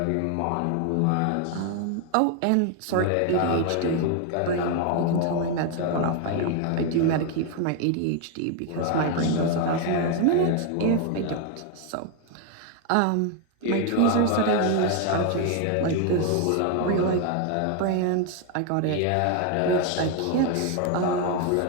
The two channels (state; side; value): different; both; correlation 0.01